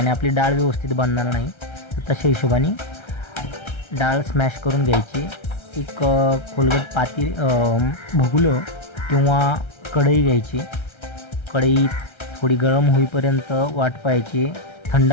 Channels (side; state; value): right; late; 1.3 ms